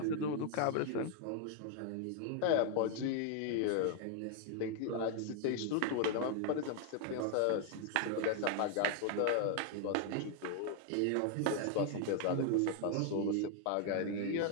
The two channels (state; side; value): different; both; correlation 0.00